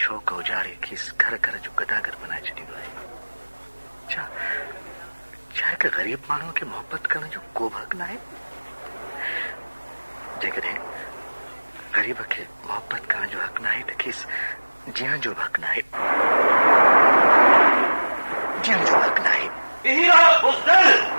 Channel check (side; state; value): both; inverted; correlation -1.00